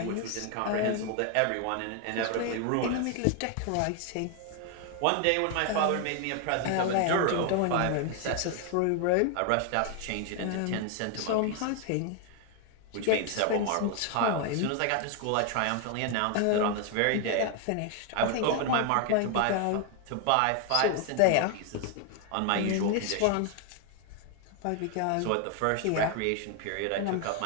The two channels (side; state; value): both; different; correlation 0.01